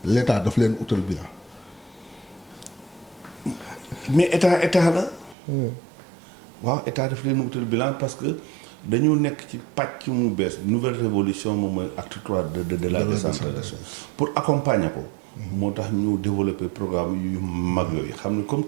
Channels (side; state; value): left; drops out; at 5.4 s